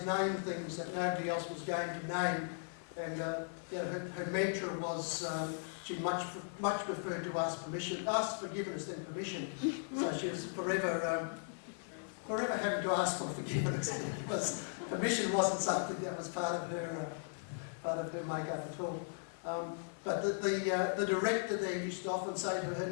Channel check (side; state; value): right; silent; 53 dB below the other